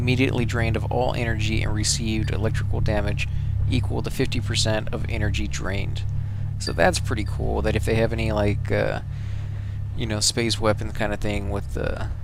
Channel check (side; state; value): both; identical; correlation 1.00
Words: drained of all energy and received electrical damage equal to 50% of energy drained. So that's pretty cool. That if they have any like you know, space weapon kind of thing with